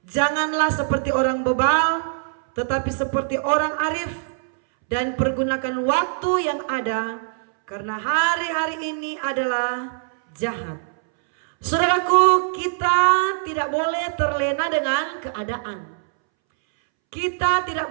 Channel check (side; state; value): left; silent; 64 dB below the other